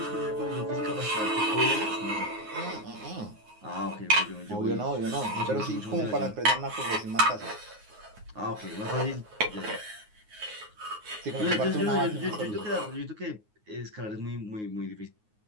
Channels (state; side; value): late; left; 9.5 ms